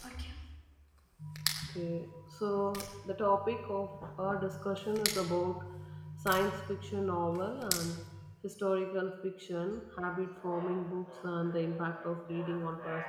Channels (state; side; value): identical; both; correlation 1.00